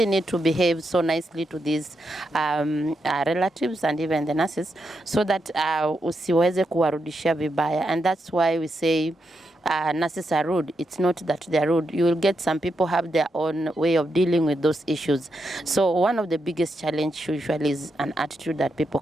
need to behave so nicely to these relatives and even the nurses, so that usiweze kuwarudishia vibaya. And that's why we say nurses are rude. It's not that they're rude. You will get some people have their own way of dealing with those issues. So one of the biggest challenge usually is an attitude that people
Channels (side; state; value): both; normal; correlation 0.84